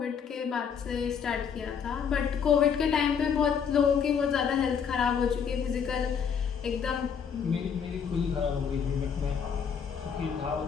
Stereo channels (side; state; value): right; quieter; 7.0 dB